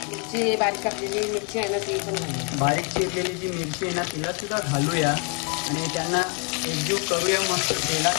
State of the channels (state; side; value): quieter; right; 36.5 dB